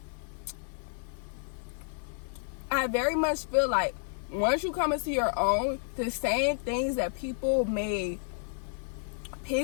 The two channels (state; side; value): silent; right; 57 dB below the other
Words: I very much feel like once you come into your own, the same things that people may